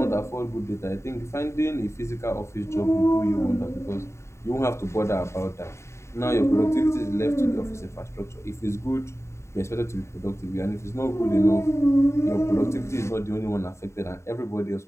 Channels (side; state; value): right; late; 0.13 ms